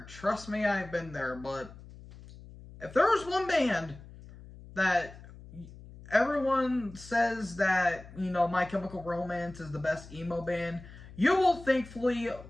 Trust me, I've been there. But if there was one band that everyone says that, My Chemical Romance is the best emo band, you will thankfully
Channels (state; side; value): noise; left; hum, 18 dB below the sound